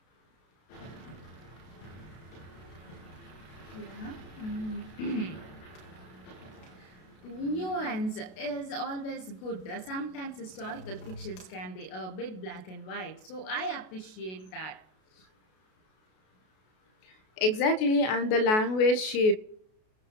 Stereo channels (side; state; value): right; late; 32 ms